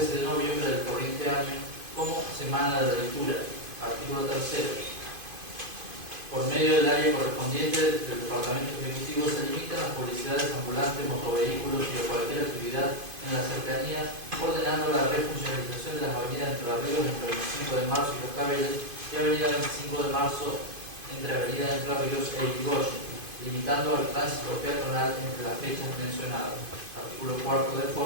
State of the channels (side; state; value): left; late; 2.5 ms